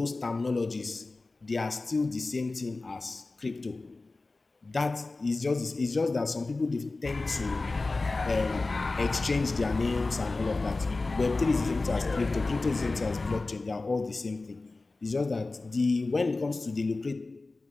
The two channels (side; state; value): right; quieter; 3.4 dB